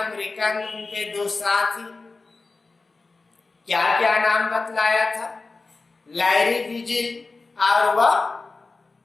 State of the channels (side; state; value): right; quieter; 3.8 dB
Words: उनके 2 साथी। क्या क्या नाम बतलाया था? लैरी विजिल और वह